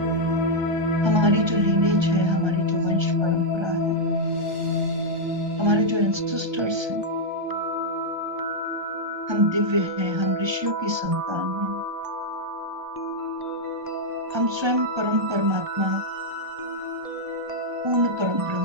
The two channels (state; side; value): late; left; 1.3 ms